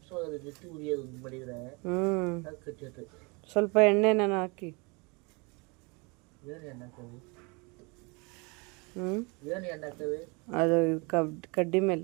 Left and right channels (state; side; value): quieter; left; 29.2 dB